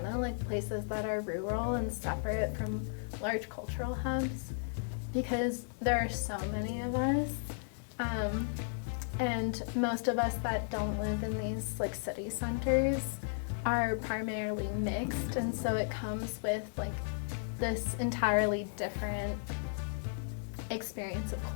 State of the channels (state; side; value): silent; right; digital silence